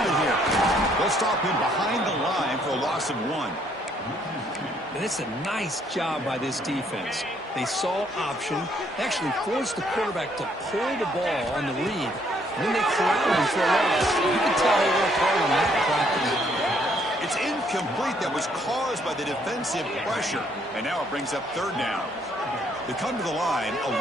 it here. They'll stop him behind the line for a loss of 1. And it's a nice job by this defense. They saw option, actually forced the quarterback to pull the ball on the read, and then they corralled him for a loss. You can tell they worked hard on that practice. It's incomplete. That was caused by the defensive pressure. And now it brings up 3rd down. They come to the line, a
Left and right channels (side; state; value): both; normal; correlation 0.68